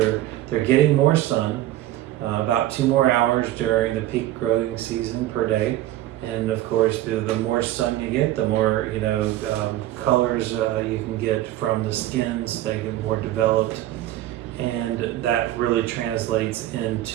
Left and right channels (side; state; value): left; quieter; 14.5 dB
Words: getting more sun, about 2 more hours during the peak growing season per day. And of course, the more sun you get, the more colors you can get from the skins. They get more developed, and that really translates